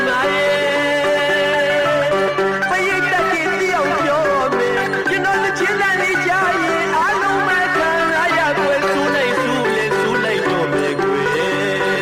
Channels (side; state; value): both; identical; correlation 1.00